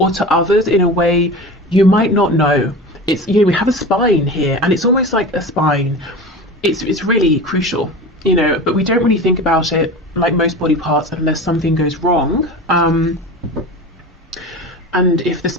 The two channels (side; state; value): both; normal; correlation 0.31